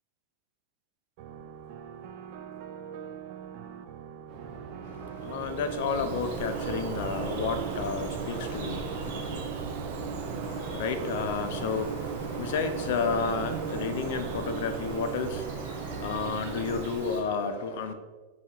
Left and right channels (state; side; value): normal; both; correlation -0.13